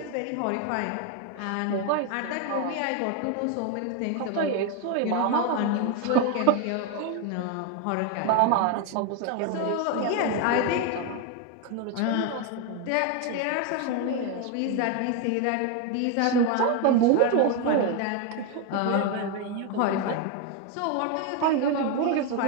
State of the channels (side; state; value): both; different; correlation 0.01